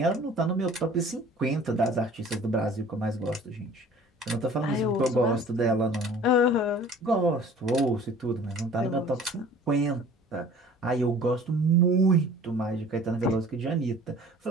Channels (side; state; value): both; normal; correlation 0.48